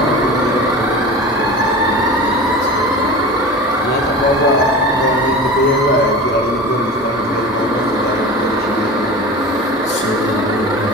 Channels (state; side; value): normal; both; correlation 0.33